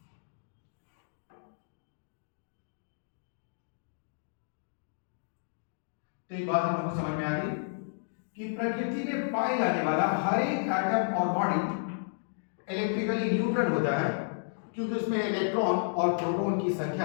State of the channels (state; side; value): silent; right; digital silence